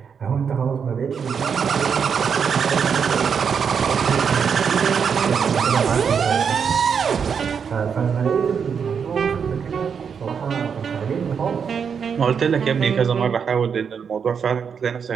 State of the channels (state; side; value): quieter; left; 6.7 dB